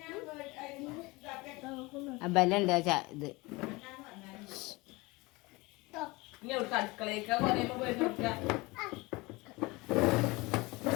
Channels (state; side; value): quieter; right; 23.5 dB